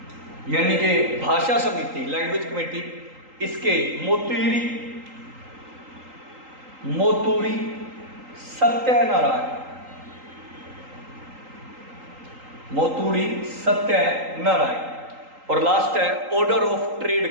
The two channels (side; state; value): left; late; 3.8 ms